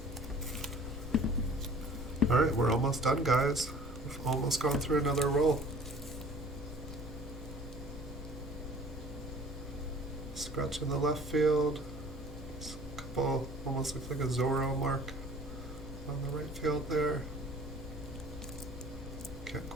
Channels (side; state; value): both; normal; correlation 0.49